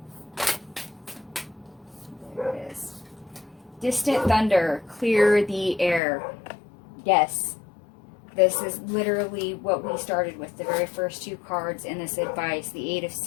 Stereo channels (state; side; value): drops out; right; at 6.0 s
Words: There it is. Distant thunder, clear the air. Yes. This is literally what we started with, the very first two cards in this advice, the 8 of